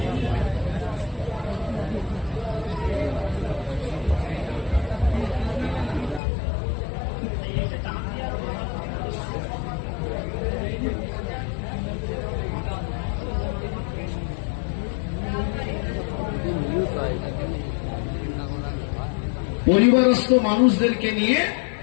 পরিবারস্থ মানুষদেরকে নিয়ে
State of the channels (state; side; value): drops out; right; at 6.2 s